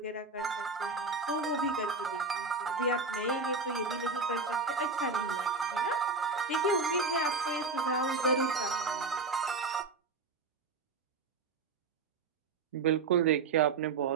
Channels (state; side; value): quieter; left; 4.1 dB